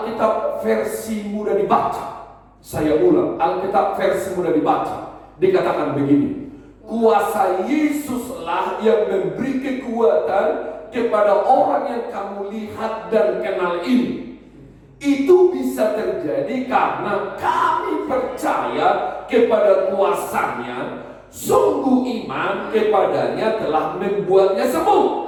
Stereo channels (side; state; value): both; identical; correlation 1.00